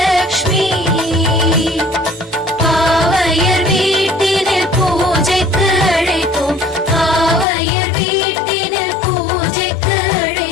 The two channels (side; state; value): right; drops out; at 7.5 s